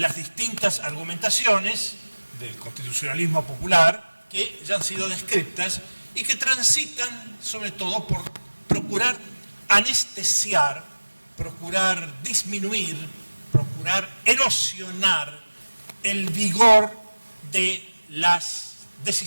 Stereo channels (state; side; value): inverted; both; correlation -1.00